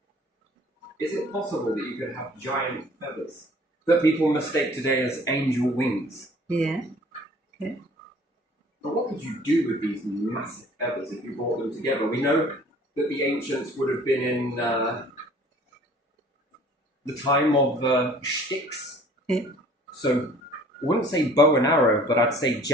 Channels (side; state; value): both; normal; correlation 0.52